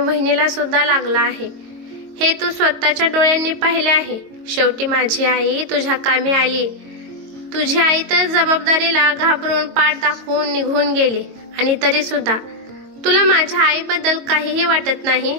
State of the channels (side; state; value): left; late; 22 ms